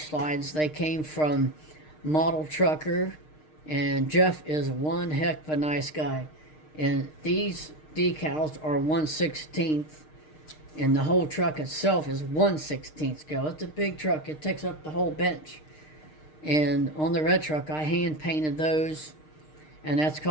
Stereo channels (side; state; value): right; late; 6.5 ms